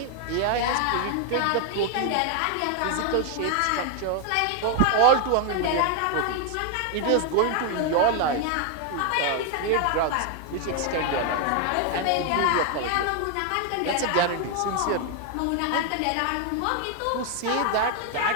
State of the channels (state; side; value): different; both; correlation 0.00